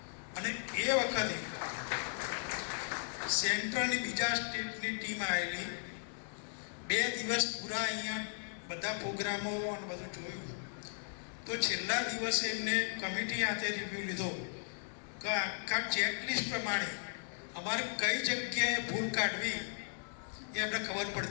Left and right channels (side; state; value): right; silent; digital silence